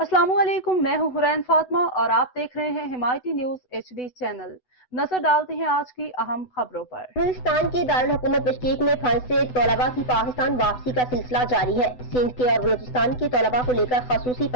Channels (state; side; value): late; right; 8.0 ms